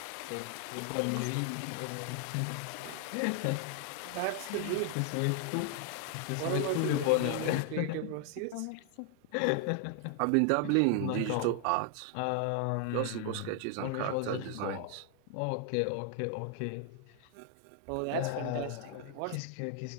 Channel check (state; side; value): different; both; correlation 0.00